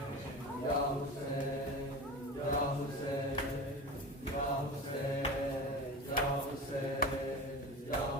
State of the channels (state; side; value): normal; both; correlation 0.29